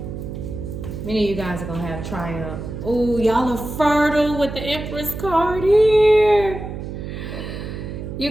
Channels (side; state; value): right; noise; hum, 8 dB below the sound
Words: Many of you guys are gonna have Triumph. Oh, y'all are fertile with the Empress card here.